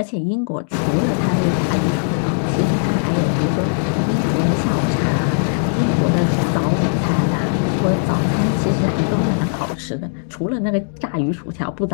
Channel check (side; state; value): right; silent; digital silence